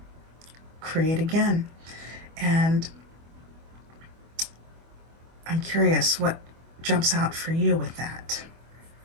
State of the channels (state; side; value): late; left; 25 ms